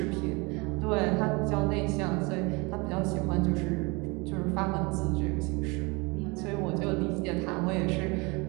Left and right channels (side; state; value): left; quieter; 27.2 dB